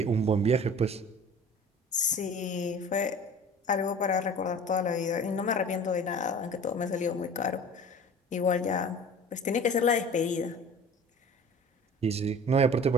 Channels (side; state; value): both; normal; correlation 0.42